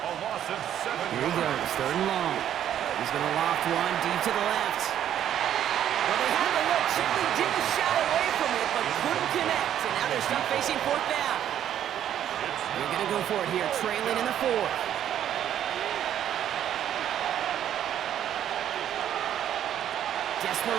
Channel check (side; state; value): left; quieter; 10.5 dB